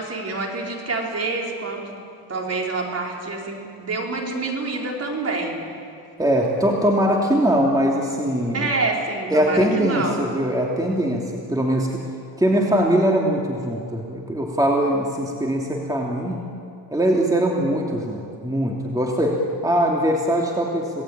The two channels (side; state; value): both; normal; correlation 0.51